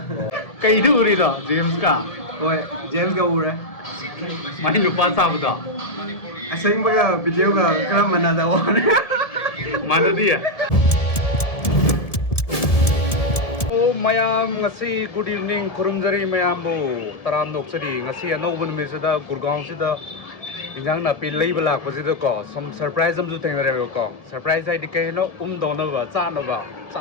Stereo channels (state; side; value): late; right; 1.7 ms